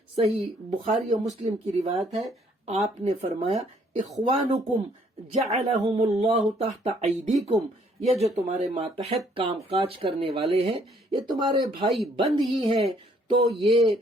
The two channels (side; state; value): both; normal; correlation 0.64